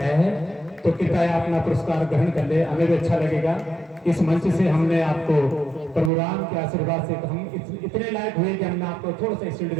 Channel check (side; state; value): left; drops out; at 6.1 s